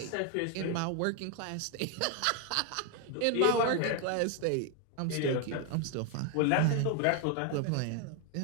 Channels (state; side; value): different; both; correlation 0.01